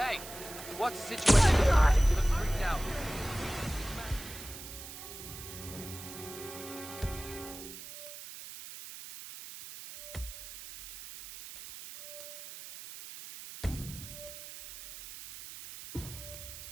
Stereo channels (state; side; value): noise; right; hiss, 12 dB below the sound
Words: what's the situation? You look freaked out.